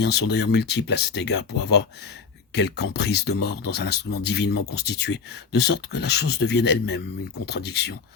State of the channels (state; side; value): quieter; right; 5.4 dB